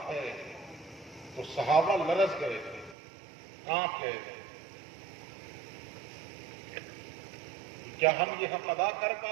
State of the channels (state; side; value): drops out; left; at 3.0 s